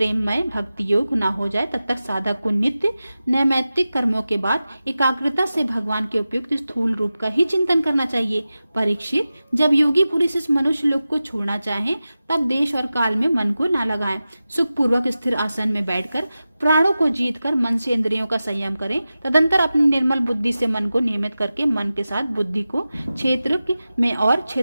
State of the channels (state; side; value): inverted; both; correlation -0.94